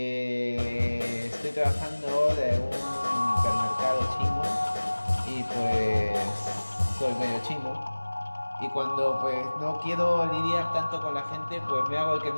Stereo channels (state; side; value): inverted; both; correlation -1.00